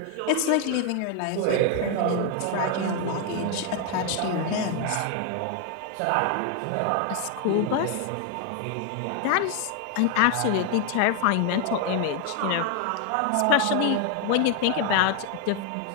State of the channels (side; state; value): both; different; correlation 0.01